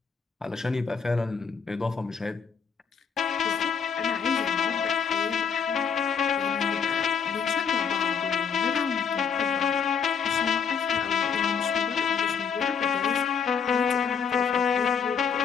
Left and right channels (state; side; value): quieter; right; 6.6 dB